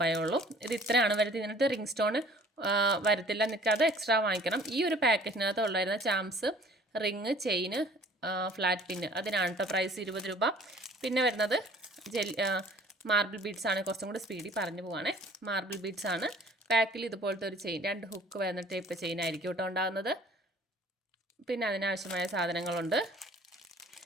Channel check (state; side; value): normal; both; correlation 0.52